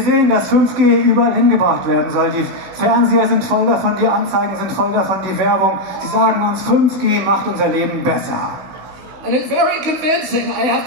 sehen, dass 5G überall hingebracht werden soll. Die Fernseher sind voll davon, die Anzeigen sind voll davon, die Werbung. Sie sagen uns, 5G macht unser Leben besser. And it's very convincing, I have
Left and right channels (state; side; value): late; left; 16 ms